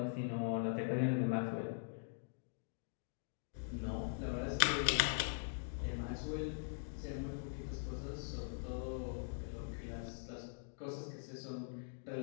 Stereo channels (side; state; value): right; silent; digital silence